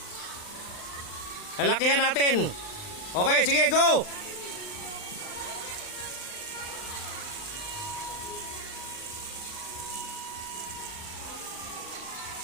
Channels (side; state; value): right; late; 39 ms